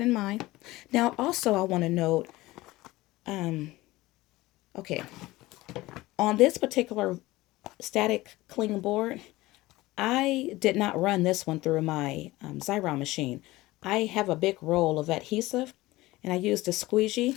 in mind. Now, also, I want to note, okay, on this particular static cling board, I did not run this one through my Xyron machine. I have a big roll of adhesive, and I used a squeegee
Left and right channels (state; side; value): quieter; right; 18.9 dB